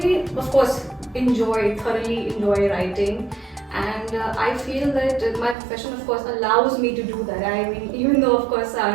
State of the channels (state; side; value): drops out; left; at 5.6 s